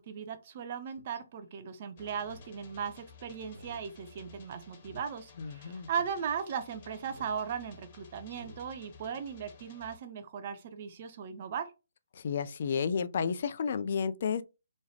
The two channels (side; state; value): both; inverted; correlation -0.62